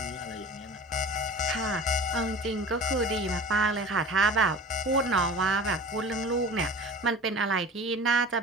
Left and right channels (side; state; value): both; normal; correlation 0.38